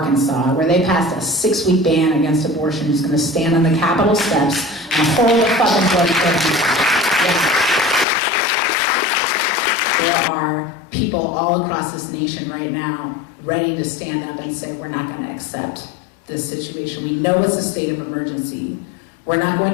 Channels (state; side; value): drops out; right; at 8.1 s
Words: where they passed a 6-week ban against abortion who's going to stand on the Capitol steps and hold a fucking bloody coat. There are people all across this nation right now ready to stand up and say, we're not going to accept this situation. We know it's a state of emergency. We're not going